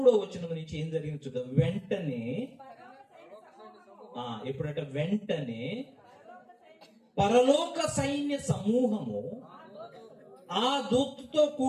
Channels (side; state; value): both; identical; correlation 1.00